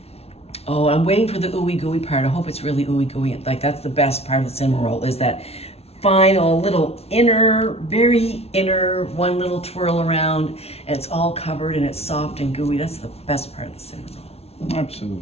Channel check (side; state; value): right; late; 0.30 ms